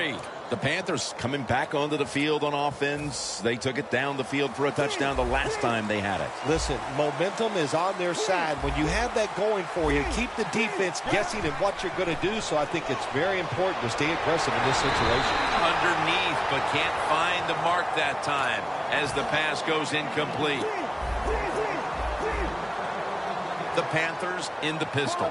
The Panthers coming back onto the field on offense. They took it down the field for a touchdown the last time they had it. Listen, momentum is on their side. When you have that going for you, keep the defense guessing at what you're going to do. So I think it's very important to stay aggressive in this situation. Underneath, but can't find the mark that time as the pass goes incomplete. The Panthers in the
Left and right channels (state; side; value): identical; both; correlation 1.00